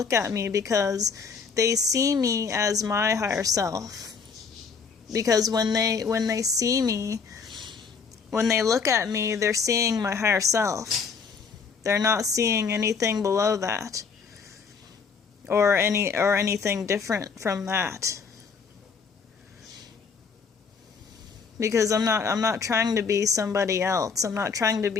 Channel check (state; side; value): quieter; right; 5.5 dB